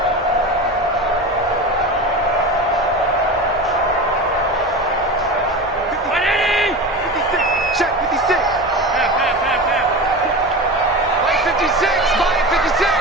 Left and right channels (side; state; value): both; normal; correlation 0.28